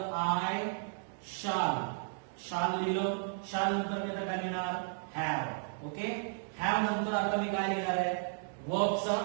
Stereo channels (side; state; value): left; silent; digital silence